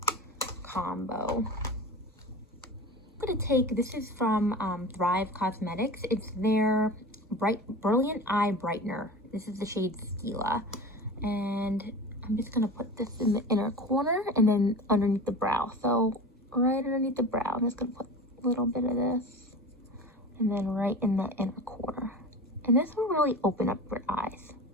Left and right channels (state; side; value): normal; both; correlation 0.33